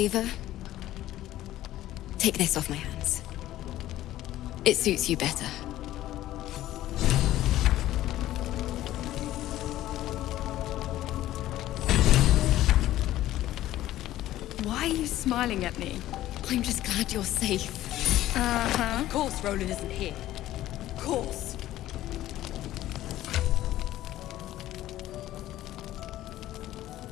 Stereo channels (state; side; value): quieter; right; 14.3 dB